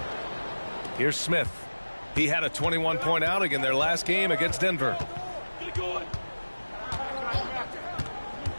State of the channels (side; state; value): both; inverted; correlation -1.00